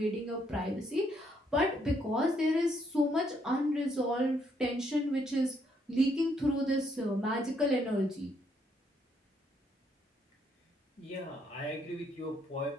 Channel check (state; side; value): normal; both; correlation 0.72